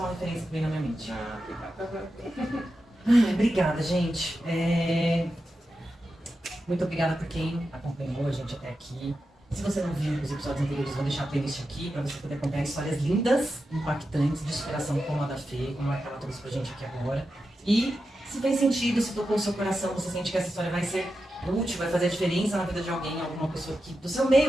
referência que vem na minha mente. Obrigada, gente. Muito obrigada por quem acompanhou a gente até aqui. Se você não viu os episódios anteriores, vou deixar a playlist aqui para você poder acompanhar histórias lindas, impactantes, de superação como a da Fê, como a que ela trouxe pra gente aqui agora. E se fez sentido, se tocou o seu coração, você sente que essa história vai ser útil, vai fazer a diferença na vida de alguém, alguma pessoa que, do seu meio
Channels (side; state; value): both; normal; correlation 0.90